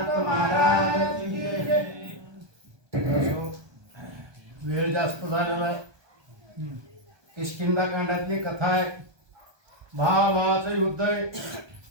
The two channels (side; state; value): left; late; 1.2 ms